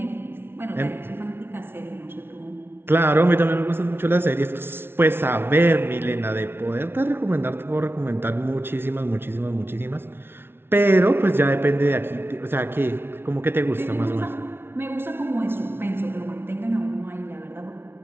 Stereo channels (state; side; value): late; left; 0.11 ms